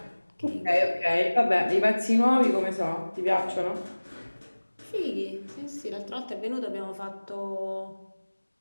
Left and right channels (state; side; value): inverted; both; correlation -1.00